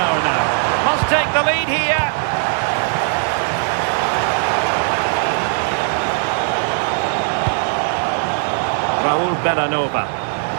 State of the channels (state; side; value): silent; left; 59 dB below the other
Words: now. Must take the lead here. Raul Bellanova.